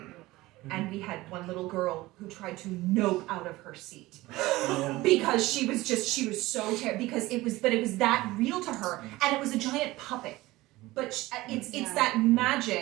and we had one little girl who tried to nope out of her seat because she was so terrible because it was that real to her, and it was a giant puppet. But it's that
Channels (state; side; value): quieter; left; 18.9 dB